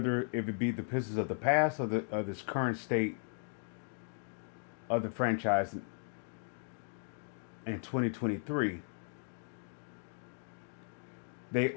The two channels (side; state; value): right; silent; 53 dB below the other